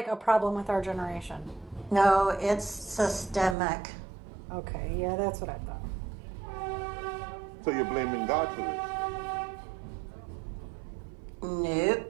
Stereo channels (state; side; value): drops out; left; at 3.6 s